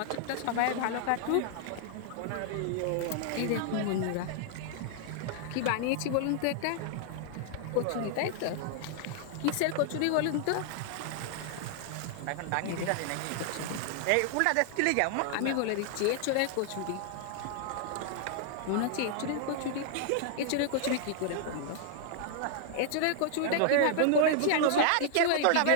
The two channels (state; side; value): different; both; correlation 0.00